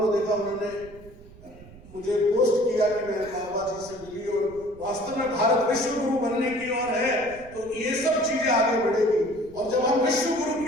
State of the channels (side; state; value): right; noise; rumble, 20 dB below the sound